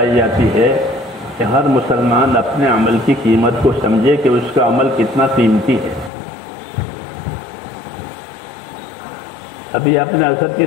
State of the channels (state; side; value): drops out; right; at 6.1 s